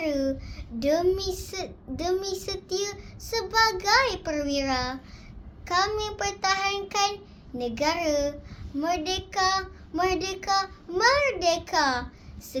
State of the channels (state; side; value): identical; both; correlation 1.00